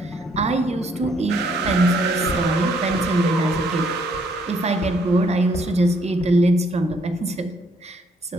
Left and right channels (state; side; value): normal; both; correlation 0.68